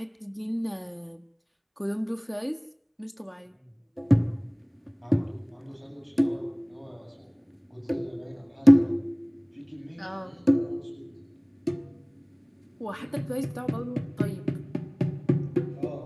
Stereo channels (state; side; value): identical; both; correlation 1.00